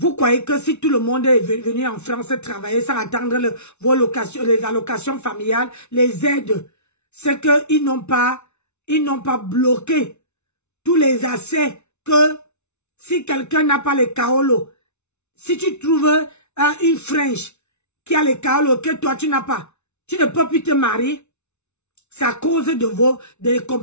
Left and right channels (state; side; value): late; right; 0.82 ms